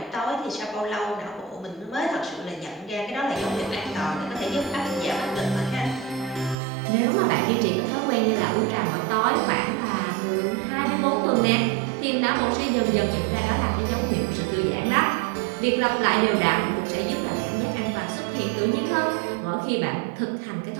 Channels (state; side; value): drops out; left; at 6.6 s